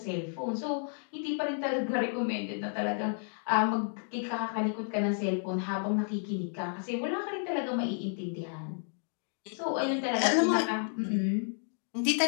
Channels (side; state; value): right; silent; 57 dB below the other